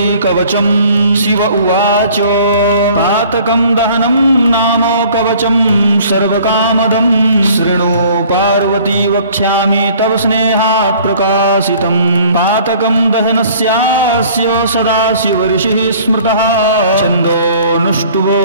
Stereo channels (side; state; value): both; inverted; correlation -0.53